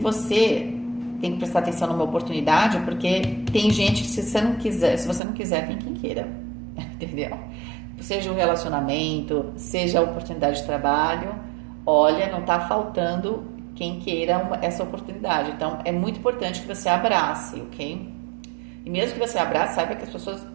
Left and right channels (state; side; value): drops out; left; at 5.2 s